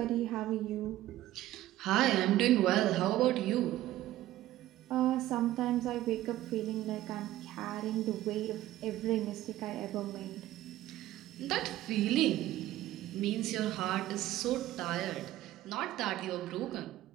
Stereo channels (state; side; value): quieter; left; 14.8 dB